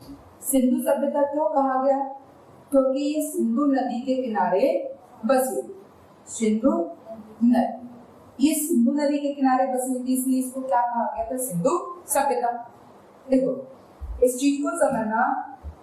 सिंधु सभ्यता क्यों कहा गया, क्योंकि ये सिंधु नदी के किनारे बसी, सिंधु नदी, ये सिंधु नदी के किनारे बसी हुई थी, इसलिए इसको क्या कहा गया था, सिंधु सभ्यता। देखो इस चीज को समझना,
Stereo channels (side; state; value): both; identical; correlation 1.00